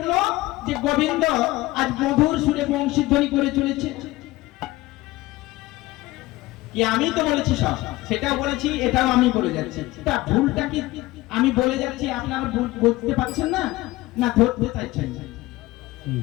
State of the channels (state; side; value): quieter; right; 18.7 dB